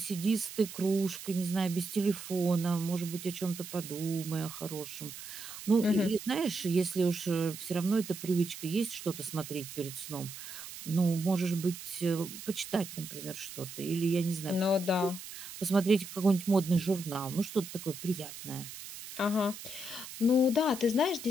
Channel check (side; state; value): right; noise; hiss, 12 dB below the sound